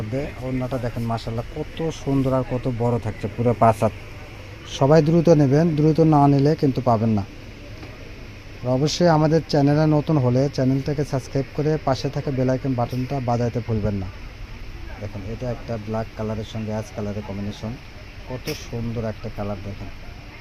ওড়নাটা দেখেন মাশাআল্লাহ কত সুন্দর আর কত বড় থাকছে, পুরো 5 হাত। সবাই দ্রুত নেবেন, দ্রুত না নিলে কিন্তু পাবেন না। আর অবশ্যই আমাদের চ্যানেলে নতুন হলে চ্যানেলটাকে সাবস্ক্রাইব করে পাশে থাকা বেল আইকন বাটনটা বাজাইতে ভুলবেন না। দেখেন এটা একটা ব্ল্যাক কালারের সঙ্গে অ্যাশ কালারের কম্বিনেশন, কত সুন্দর একটা কালার। দেখেন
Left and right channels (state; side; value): identical; both; correlation 1.00